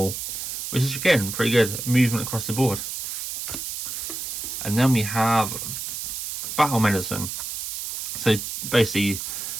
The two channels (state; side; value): noise; right; hiss, 5 dB below the sound